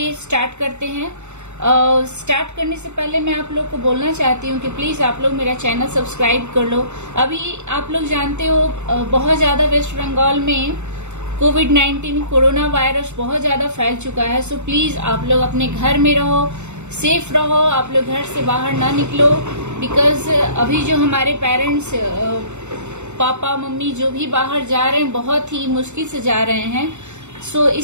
start करते हैं। Start करने से पहले मैं आप लोग को बोलना चाहती हूँ कि प्लीज आप लोग मेरा चैनल सब्सक्राइब कर लो। अभी आप लोग जानते हो बहुत ज्यादा वेस्ट बंगाल में कोविड-19 कोरोना वायरस बहुत ज्यादा फैल चुका है। सो प्लीज आप लोग अपने घर में रहो, सेफ रहो, आप लोग घर से बाहर ना निकलो। बिकॉज अभी जो हमारे पेरेंट्स पापा मम्मी जो भी बाहर जा रहे हैं बहुत ही मुश्किल से जा रहे हैं। सो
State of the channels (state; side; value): late; left; 0.83 ms